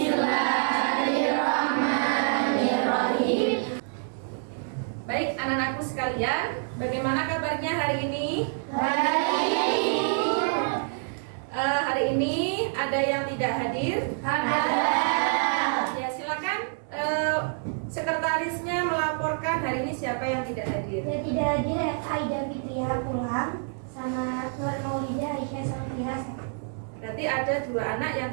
Baik anak-anakku sekalian, bagaimana kabarnya hari ini? Baik. Hari ini ada yang tidak hadir? Ada. Ya silakan. Sekretarisnya melaporkan hari ini siapa yang tidak hadir. Yang tidak hadir Aida Fitria pulang sama Nur Maulida Aisyah Safira. Berarti ada 2 anak yang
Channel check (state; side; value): silent; left; 60 dB below the other